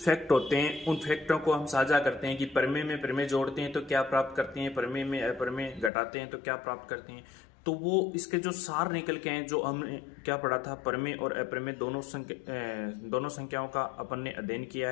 होते हैं, उन फैक्टों को हम साझा करते हैं कि परिमेय में परिमेय जोड़ते हैं तो क्या प्राप्त करते हैं, परिमेय में अपरिमेय घटाते हैं तो क्या प्राप्त करते हैं। तो वो इसके जो सार निकल के हैं, जो हमने क्या पढ़ा था, परिमेय और अपरिमेय दोनों संख्याओं का अपन ने अध्ययन किया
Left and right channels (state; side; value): drops out; right; at 5.9 s